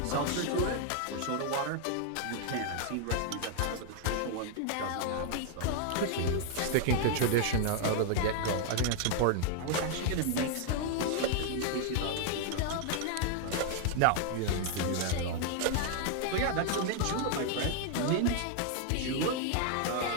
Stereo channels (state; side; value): different; both; correlation 0.00